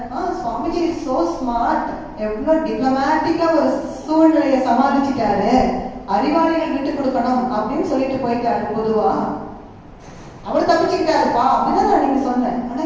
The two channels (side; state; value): both; identical; correlation 1.00